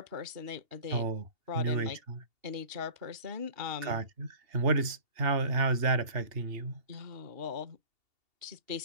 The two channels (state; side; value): late; left; 2.7 ms